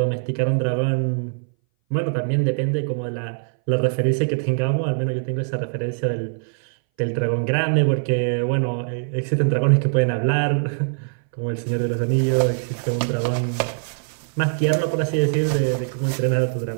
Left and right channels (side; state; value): left; silent; 60 dB below the other